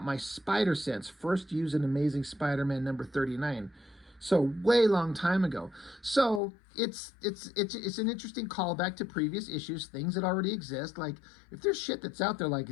my spider sense, first used in Amazing Spider-Man number 39. So way long time ago. So it's an interesting callback to previous issues, things that already exist. Like, if there's shit that's out there like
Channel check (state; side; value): drops out; right; at 6.4 s